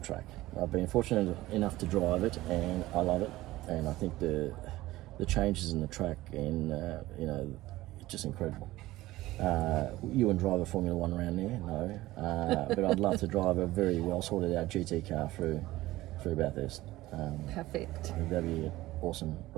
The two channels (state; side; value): quieter; left; 17.3 dB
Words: I've been fortunate enough to drive it, and I love it. And I think the changes in the track, and it's just incredible. You wouldn't drive a Formula One around there, no. But I'd love to drive a very well sorted out GT car through Bathurst. Perfect. That'd be an awesome